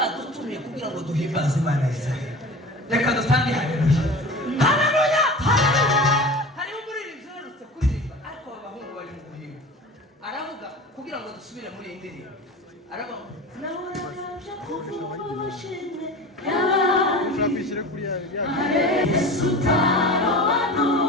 kugira ngo duhimbaze Imana Israel. Reka dutange haleluya. Haleluya! Hariho umuririmbyi uherutse kuririmba ariko abahungu bari mu guhimba. Aravuga kugira ngo dusubire muri iyi ndirimbo. Aravuga nahoraje kuvushime Ushakishire kuri ya Yesu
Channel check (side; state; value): both; normal; correlation 0.35